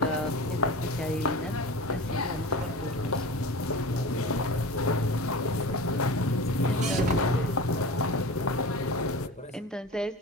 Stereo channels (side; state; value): both; normal; correlation 0.32